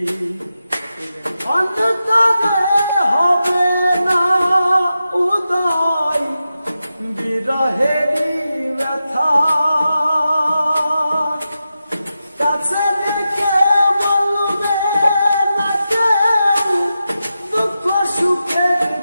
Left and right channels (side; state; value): both; inverted; correlation -0.90